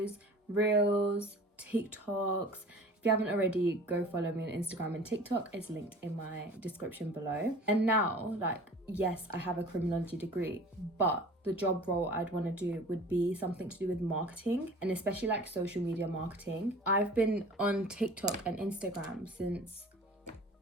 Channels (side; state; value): both; normal; correlation 0.43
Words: reels, TikToks. If you haven't already, go follow me on Instagram and TikTok. It's linked in my description below. And now, yes, I have a criminology degree, but the job role I'd want to do would be something to do with marketing, and especially like social media marketing. I've been on TikTok and Instagram since